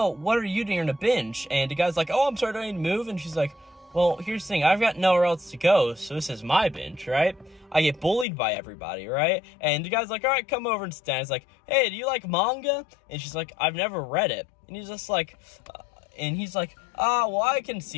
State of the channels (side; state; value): right; drops out; at 8.2 s